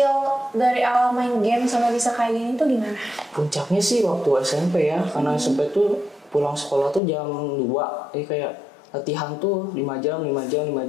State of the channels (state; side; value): drops out; right; at 7.0 s